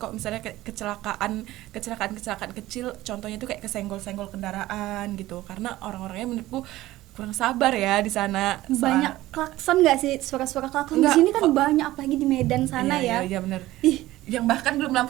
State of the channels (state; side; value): quieter; left; 16.5 dB